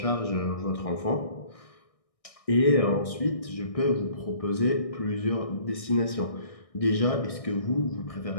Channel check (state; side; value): late; right; 1.6 ms